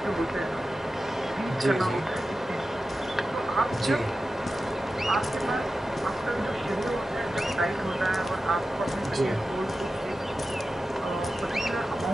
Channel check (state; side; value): normal; both; correlation 0.93